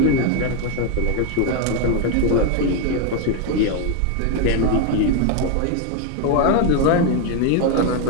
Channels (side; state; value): both; different; correlation 0.01